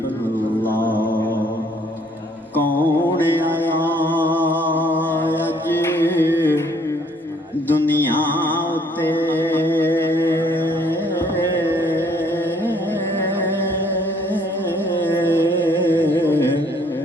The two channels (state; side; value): normal; both; correlation 0.63